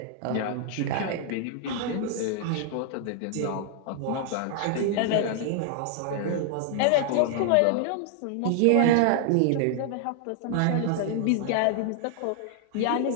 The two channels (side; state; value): both; different; correlation 0.00